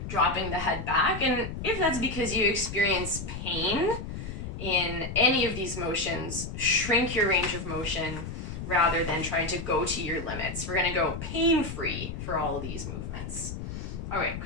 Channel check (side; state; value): left; noise; rumble, 7 dB below the sound